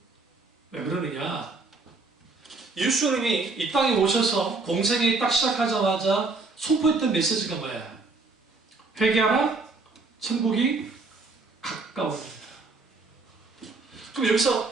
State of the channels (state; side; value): quieter; left; 3.8 dB